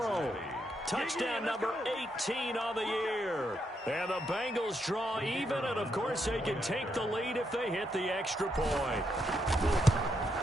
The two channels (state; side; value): normal; both; correlation 0.79